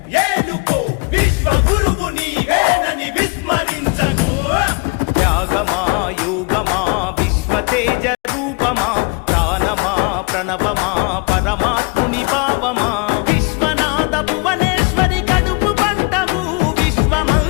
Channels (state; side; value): quieter; right; 30.9 dB